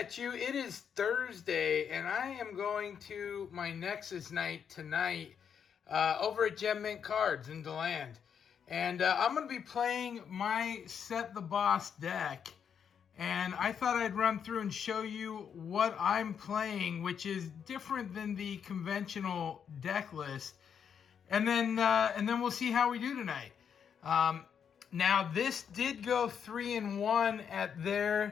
you. It is Thursday, and I am going to my Nexus night tonight over at Gem Mint Cards in DeLand. And I'm going to be playing my Sett the Boss deck. And I thought I'd run through and show you what I'm playing, which is different than the conventional deck list. And then we'll see how we do tonight. Now, this did go 3-1 at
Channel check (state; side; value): quieter; right; 7.6 dB